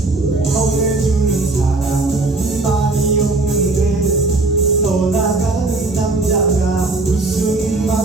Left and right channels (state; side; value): quieter; left; 3.3 dB